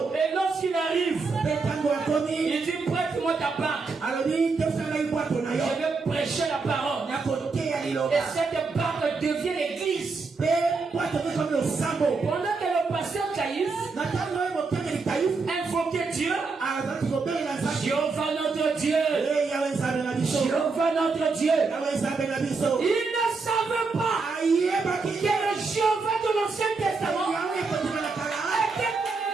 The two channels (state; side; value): quieter; left; 4.3 dB